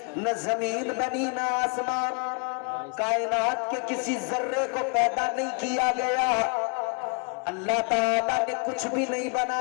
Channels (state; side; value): quieter; right; 37.5 dB